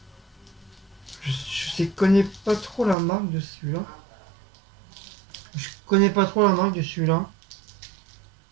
Je connais pas trop la marque de celui-là. Je connais pas trop la marque de celui-là.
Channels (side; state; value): left; drops out; at 3.0 s